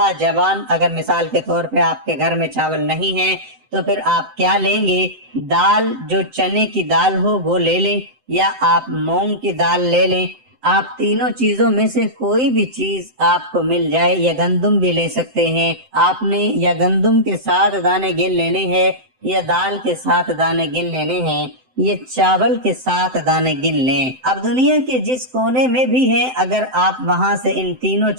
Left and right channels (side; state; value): left; late; 7.8 ms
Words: جوان۔ اگر مثال کے طور پہ آپ کے گھر میں چاول نہیں ہے تو پھر آپ کیا لیں گے؟ دال، جو چنے کی دال ہو وہ لے لیں، یا آپ مونگ کی دال لے لیں۔ آپ تینوں چیزوں میں سے کوئی بھی چیز آپ کو مل جائے، یا گندم بھی لے سکتے ہیں۔ آپ نے یا گندم کے 7 دانے گن لینے ہیں، یا دال کے 7 دانے گن لینے ہیں، یہ چاول کے 7 دانے گن لیں۔ اب دنیا کے جس کونے میں بھی ہیں، اگر آپ وہاں سے ان تینوں